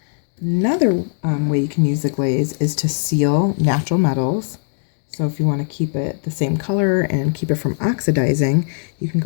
Another way you can use the glaze is to seal natural metals. So if you want to keep it the same color and keep it from oxidizing, you can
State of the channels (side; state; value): right; silent; digital silence